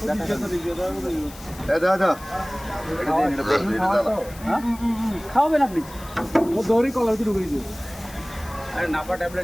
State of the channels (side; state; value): left; noise; hiss, 19 dB below the sound